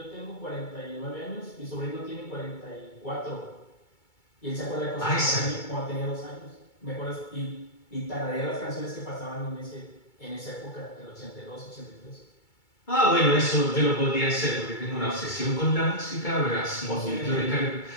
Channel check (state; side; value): late; right; 2.3 ms